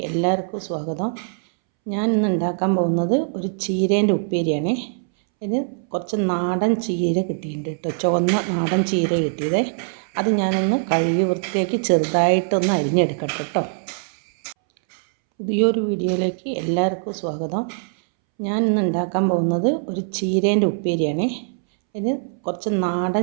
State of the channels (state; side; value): silent; left; 64 dB below the other